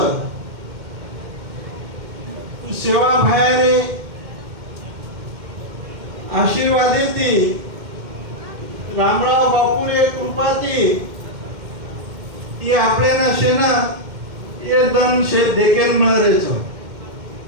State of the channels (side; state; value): left; late; 2.1 ms